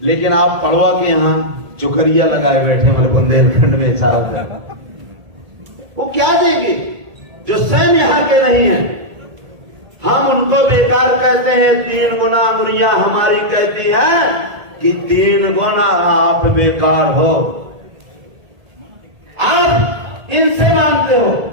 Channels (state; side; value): late; left; 1.8 ms